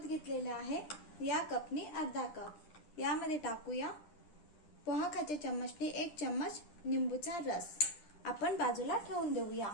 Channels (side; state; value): right; late; 10 ms